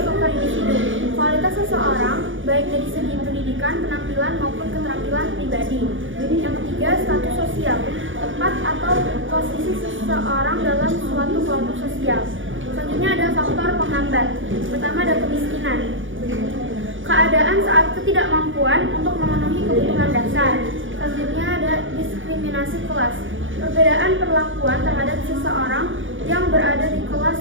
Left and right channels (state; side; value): late; left; 0.57 ms